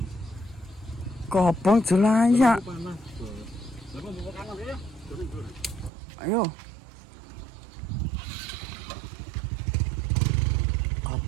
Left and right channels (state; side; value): drops out; left; at 5.9 s